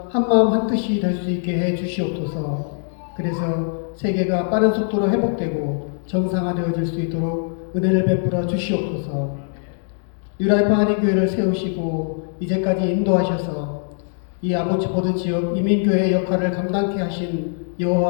한마음 한뜻이 될 수 있게 해 주시옵소서. 그래서 세계가 빠른 속도로 회복되고 정상화되어질 수 있도록 은혜를 베풀어 주시옵소서. 뉴라이프 한인교회를 세우시고 이제까지 인도하셔서 이 아보츠포드 지역 이민교회의 역할을 감당케 하신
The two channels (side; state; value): right; silent; digital silence